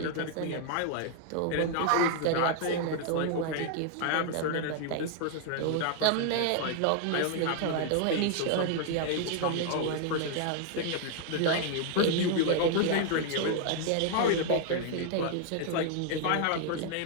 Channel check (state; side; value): different; both; correlation 0.00